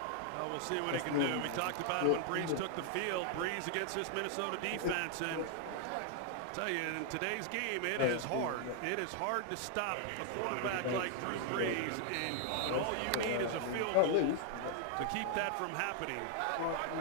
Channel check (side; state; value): both; different; correlation 0.00